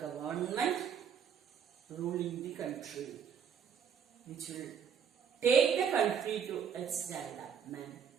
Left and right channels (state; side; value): quieter; left; 7.6 dB